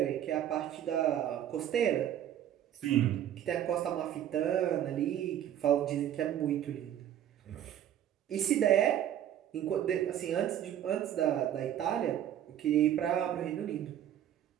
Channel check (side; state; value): left; quieter; 10.8 dB